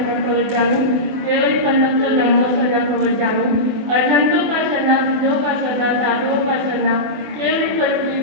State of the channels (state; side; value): late; left; 24 ms